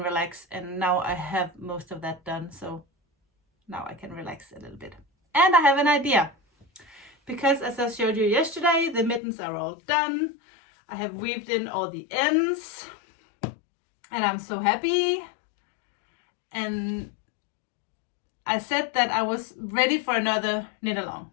relax. And now I have most of that done, so now I can relax a little bit. And I have an idea, because as I showed you yesterday, the mittens are all done. I have weaved in all the ends and I'm so happy. And I said that I was ready for another knit along,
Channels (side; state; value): right; drops out; at 9.2 s